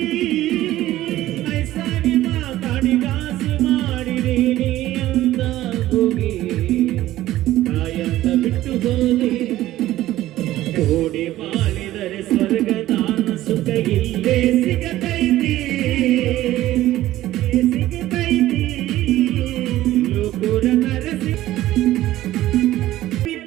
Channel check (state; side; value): quieter; left; 15.0 dB